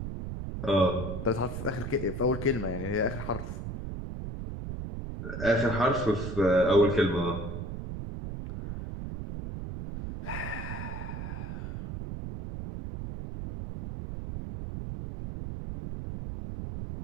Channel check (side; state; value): right; noise; rumble, 6 dB below the sound